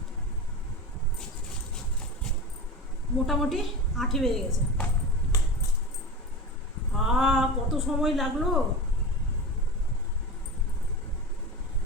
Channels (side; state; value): both; normal; correlation 0.27